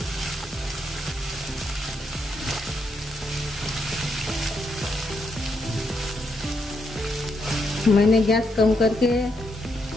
मैंने गैस कम करके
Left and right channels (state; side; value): normal; both; correlation 0.79